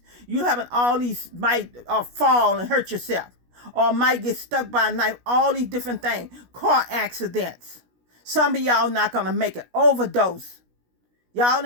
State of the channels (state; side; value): late; left; 16 ms